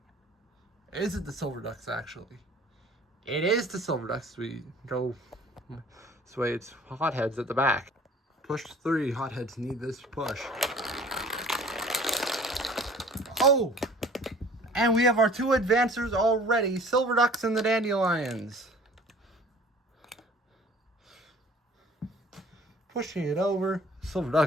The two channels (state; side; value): normal; both; correlation 0.49